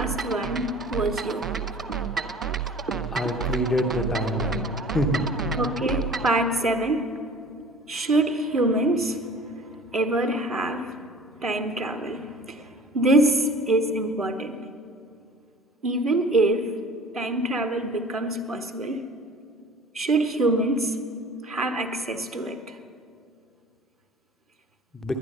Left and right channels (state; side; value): normal; both; correlation 0.45